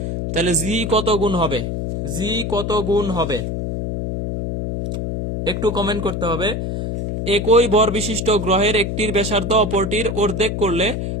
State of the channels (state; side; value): noise; left; hum, 2 dB below the sound